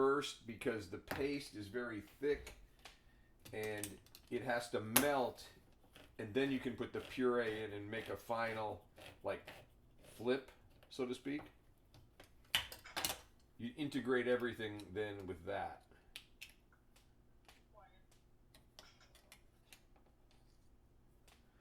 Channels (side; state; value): both; identical; correlation 1.00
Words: because the paste is very thick and it has to melt, and then you can put the puree in and make a final like flip, so to speak. You integrate everything then with that.